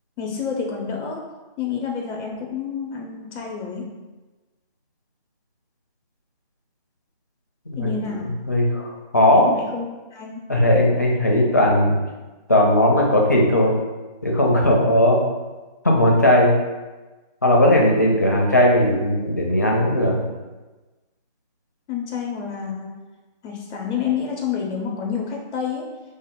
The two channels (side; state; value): both; inverted; correlation -0.40